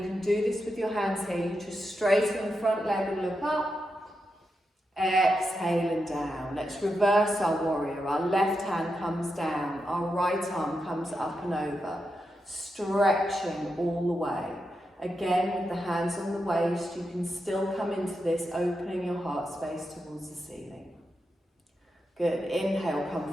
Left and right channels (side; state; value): both; normal; correlation 0.86